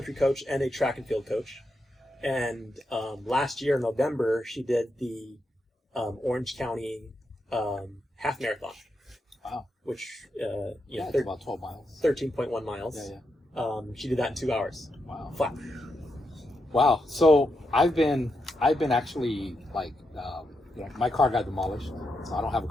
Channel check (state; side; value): normal; both; correlation 0.84